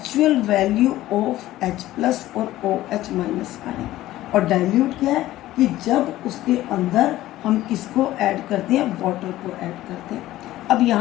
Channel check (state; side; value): quieter; right; 15.3 dB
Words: वैल्यू ऑफ H+ और OH- आयन। और डाइल्यूट क्या है कि जब उसके अंदर हम किसको ऐड करते हैं? वाटर को ऐड करते हैं। अब